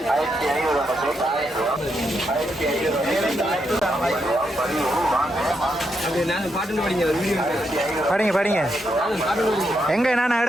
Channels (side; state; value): both; normal; correlation 0.81